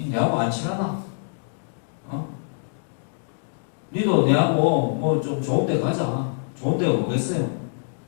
내하고 안 친하나? 니도 내하고 뭐 좀 좋은 데 가자. 좋은 데가 뭐겠어요?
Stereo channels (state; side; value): silent; right; digital silence